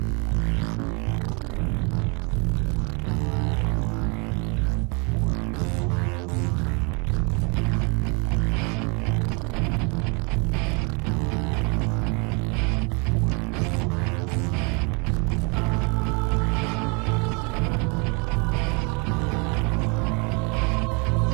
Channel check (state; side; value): quieter; left; 32.7 dB